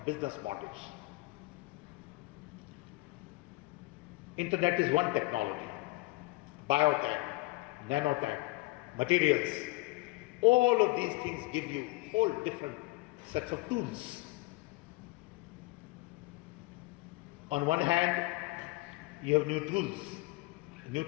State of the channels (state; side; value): quieter; right; 22.0 dB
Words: business models. Internet is one technology. Biotech, nanotech, materials, all of these things give you whole different sets of tools. On one hand, you have new tools, new